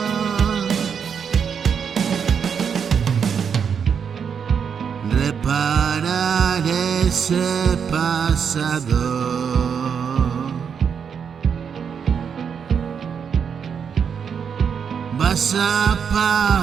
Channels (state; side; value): quieter; left; 7.0 dB